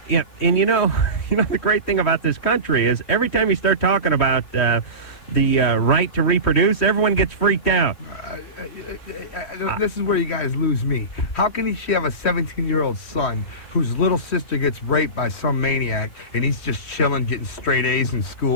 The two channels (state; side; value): late; right; 3.1 ms